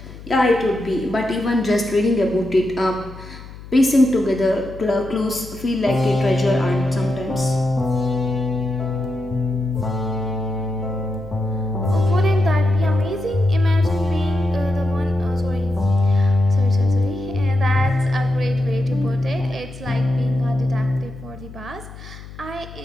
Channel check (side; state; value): left; noise; hum, 16 dB below the sound